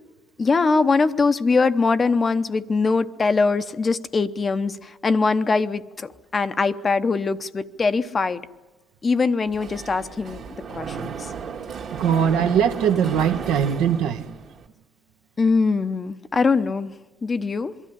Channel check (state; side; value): normal; both; correlation 0.80